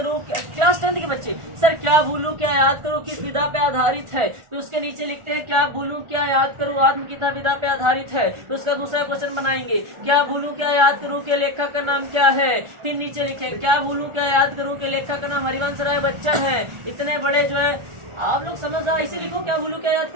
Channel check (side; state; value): left; late; 1.4 ms